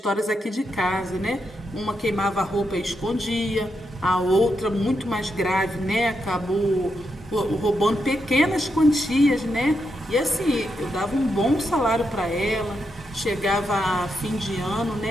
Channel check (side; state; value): both; normal; correlation 0.83